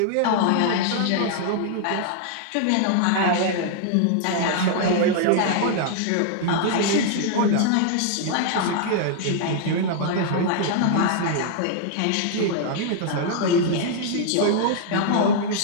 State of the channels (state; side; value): different; both; correlation -0.01